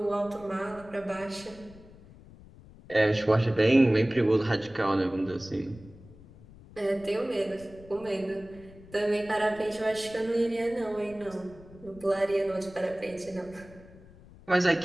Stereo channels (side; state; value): left; noise; rumble, 21 dB below the sound